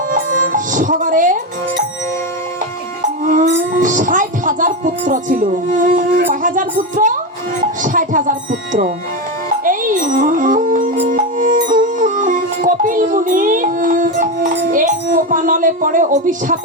সগরে ৬০,০০০ পুত্র ছিল। কয় হাজার পুত্র? ৬০,০০০ পুত্র। এই কপিল মুনি এই কোপানলে পড়ে,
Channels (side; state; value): both; normal; correlation 0.13